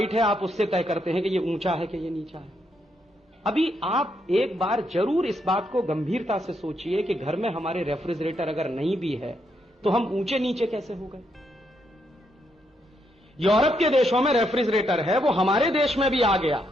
है, आप उससे तय करते हैं कि ये ऊंचा है कि ये नीचा है। अभी आप एक बार जरूर इस बात को गंभीरता से सोचिए कि घर में हमारे रेफ्रिजरेटर अगर नहीं भी है तो हम ऊंचे नीचे कैसे हो गए। यूरोप के देशों में रेफ्रिजरेटर है, वो हमारे देश में भी आ गया,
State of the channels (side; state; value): both; normal; correlation 0.78